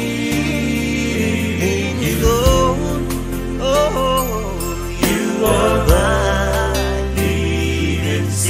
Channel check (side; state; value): both; identical; correlation 1.00